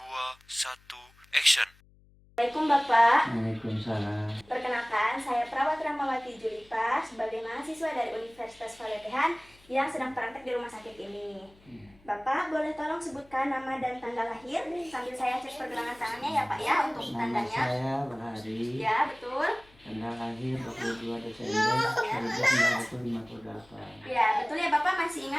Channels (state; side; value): noise; left; hum, 28 dB below the sound